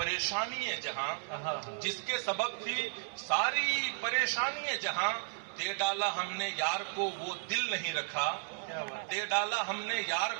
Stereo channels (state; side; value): silent; left; digital silence